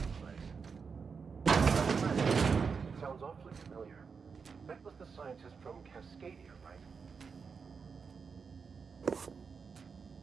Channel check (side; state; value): left; quieter; 5.6 dB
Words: the place. Sounds awfully familiar. That was the scientist from Cascadia, right?